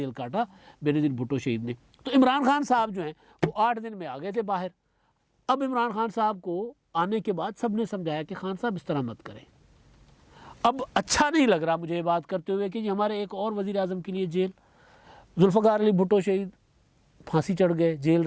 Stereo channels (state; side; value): identical; both; correlation 1.00